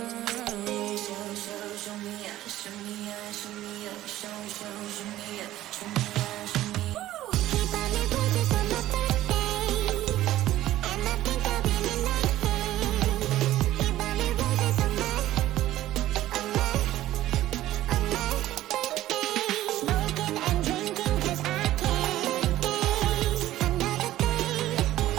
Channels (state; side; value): quieter; left; 14.5 dB